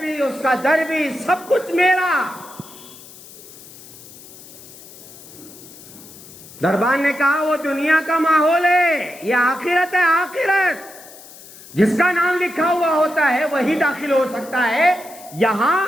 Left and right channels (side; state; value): left; noise; hiss, 19 dB below the sound